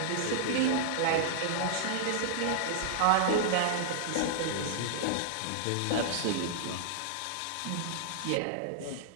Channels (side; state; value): both; different; correlation -0.02